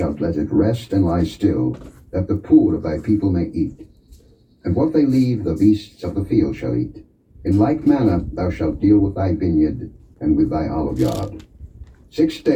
let it rest and lie still, that the poor of thy people may eat. And what they leave the beasts of the field shall eat. In like manner thou shalt deal with thy vineyard, and with thy olive yard. 6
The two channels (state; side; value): identical; both; correlation 1.00